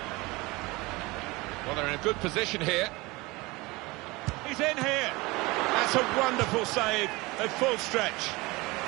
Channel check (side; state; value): left; quieter; 23.0 dB